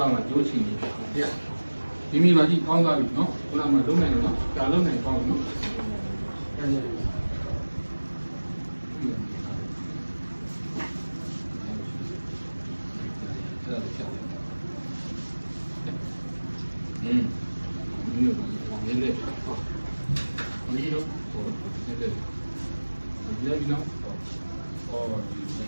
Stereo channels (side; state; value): both; inverted; correlation -1.00